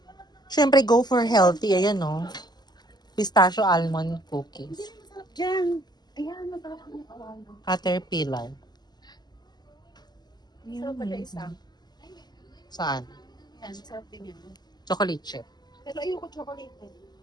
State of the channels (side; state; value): right; late; 0.20 ms